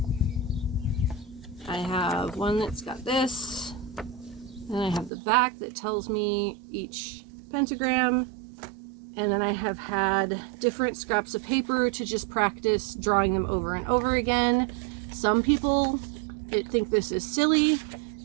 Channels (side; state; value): left; drops out; at 5.1 s